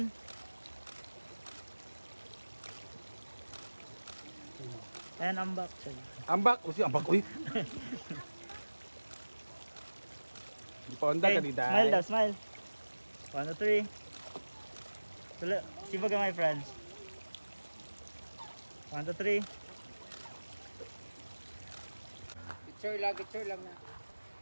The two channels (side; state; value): both; inverted; correlation -1.00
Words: 1. And I'm back. Ambak, usi ambak uy. Di pa onda ka di dai. Smile daw, smile. 1, 2, 3. Tula, sibaga my friends. 1, 2, 3. Picture lang na.